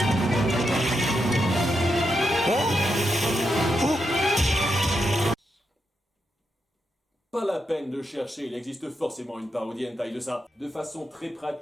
Pas la peine de chercher, il existe forcément une parodie hentai de ça. De façon très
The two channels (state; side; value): normal; both; correlation 0.84